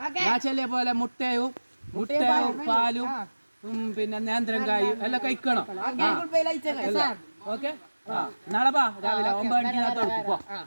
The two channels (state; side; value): inverted; both; correlation -1.00